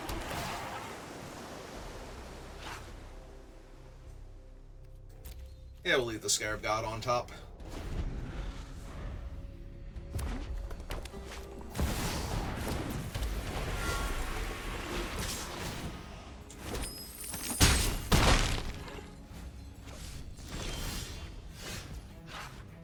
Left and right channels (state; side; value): identical; both; correlation 1.00